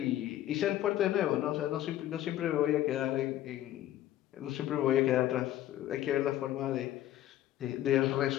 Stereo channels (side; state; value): right; quieter; 13.2 dB